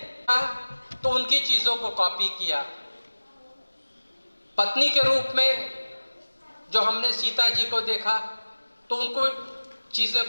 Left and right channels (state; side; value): inverted; both; correlation -1.00